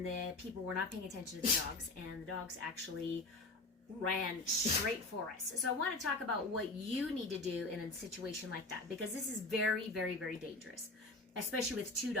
the people were not paying attention to the dogs, and the dogs actually ran straight for us. So I want to talk about what you need to do in a situation like that, because this is very, very, very dangerous, especially with two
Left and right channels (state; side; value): quieter; right; 3.2 dB